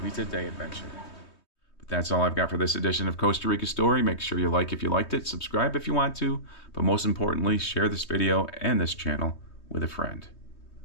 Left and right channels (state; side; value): late; right; 3.2 ms